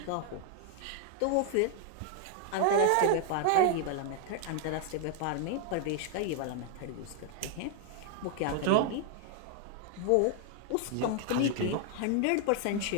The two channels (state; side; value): different; both; correlation 0.00